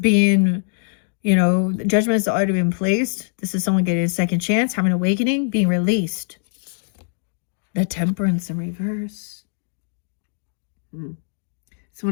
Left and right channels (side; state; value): right; silent; digital silence